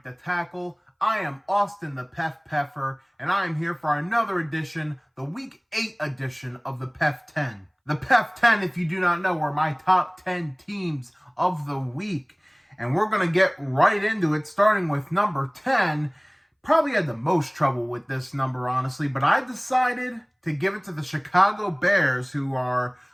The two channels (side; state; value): both; identical; correlation 1.00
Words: the Tackle. I am Austin the PEF, and I am here for another edition, the Week 8 edition of the PEF 10. The PEF 10, if you do not know, are my top 10 teams of the week. And we're going to get right into it, starting with number 10. Probably had the most trouble with this number, honestly, but I decided to give it to the Chicago Bears, who are